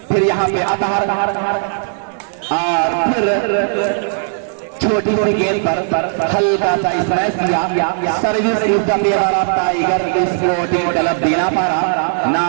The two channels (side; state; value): left; silent; 68 dB below the other